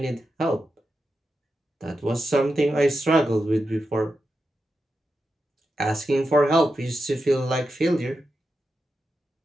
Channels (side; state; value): both; normal; correlation 0.89